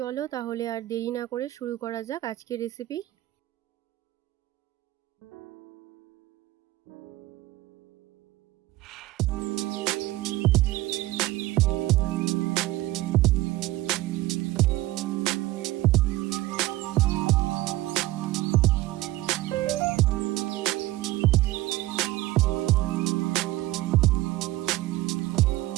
তাহলে আর দেরি না করে শুরু করা যাক আজকের রেসিপি।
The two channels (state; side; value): quieter; left; 17.4 dB